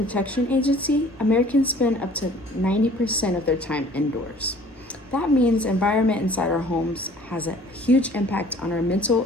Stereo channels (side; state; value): both; normal; correlation 0.52